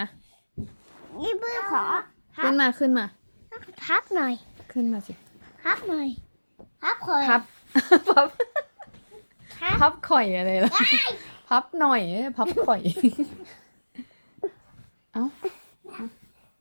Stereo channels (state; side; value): inverted; both; correlation -1.00